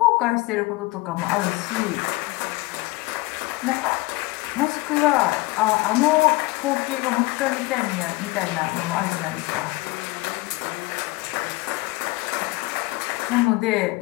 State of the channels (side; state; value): right; quieter; 21.7 dB